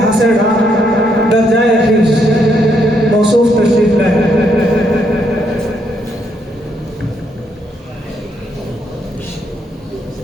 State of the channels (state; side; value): normal; both; correlation 0.75